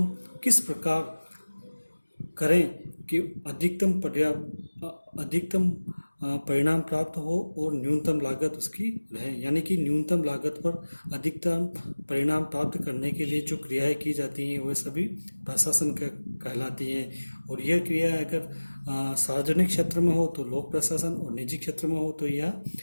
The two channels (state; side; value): inverted; both; correlation -1.00